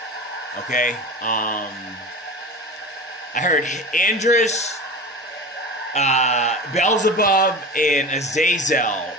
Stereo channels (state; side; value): normal; both; correlation 0.31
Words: Okay, I heard Andres, Beelzebub, and Azazel